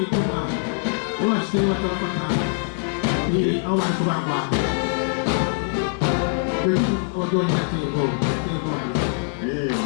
iyo bashyize batabafata aho bari kubagwa abadonyi atego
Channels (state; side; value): silent; right; digital silence